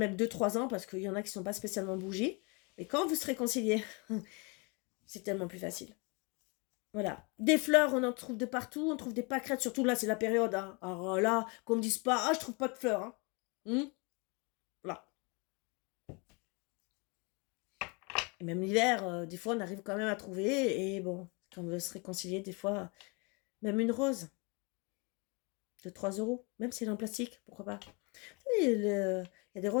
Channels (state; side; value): quieter; right; 30.9 dB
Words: 2-3 ans, parce qu'il y en a qui ne sont pas spécialement bougies. Mais quand vous serez réconciliez, c'est tellement plus facile. Voilà. Des fleurs, on en trouve de partout. On trouve des pâquerettes, surtout là, c'est la période. Hein. Alors là, qu'on me dise pas, ah, je trouve pas de fleurs. Hein. Voilà. Et même l'hiver, des fois, on arrive quand même à trouver. Et bon, quand on veut se réconcilier, des fois, même une rose de 3 euros, même si elle est en plastique, pourquoi pas. Il y a des